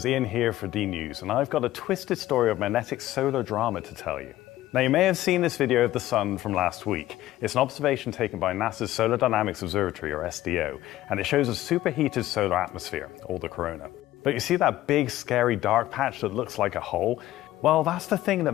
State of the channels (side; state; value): right; quieter; 15.1 dB